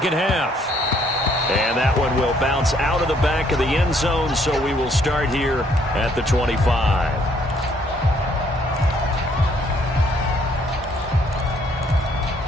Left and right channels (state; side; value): normal; both; correlation 0.66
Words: half. And that one will bounce out of the back of the end zone, so we will start here at the 25.